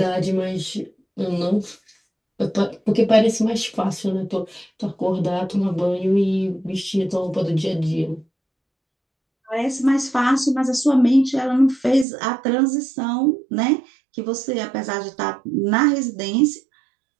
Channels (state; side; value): drops out; left; at 12.1 s